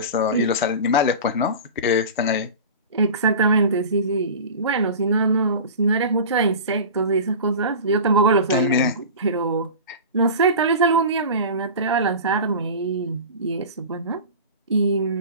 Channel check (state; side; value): inverted; both; correlation -0.33